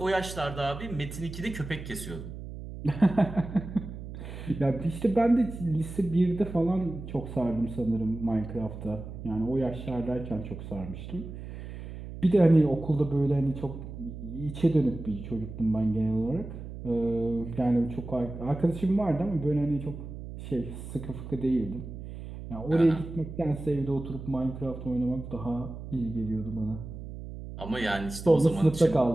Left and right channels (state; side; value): noise; right; hum, 10 dB below the sound